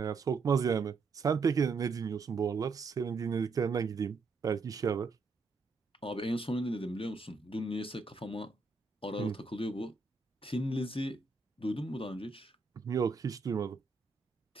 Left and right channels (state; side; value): quieter; left; 4.2 dB